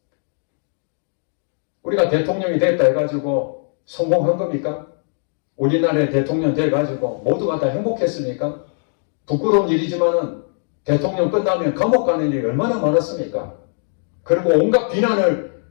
우리가 대통령이 됐다 해가지고 성공한 겁니까? 우리나라의 대통령 돼가지고 모두가 다 행복했습니까? 부끄러운 일이지만은 대통령 끝나면 감옥 가는 일이 얼마나 많았습니까? 그리고 온갖 비난을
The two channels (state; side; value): silent; right; 65 dB below the other